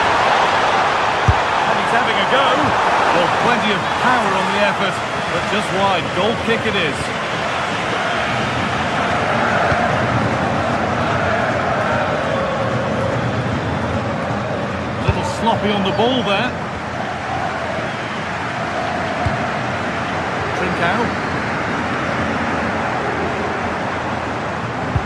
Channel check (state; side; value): identical; both; correlation 1.00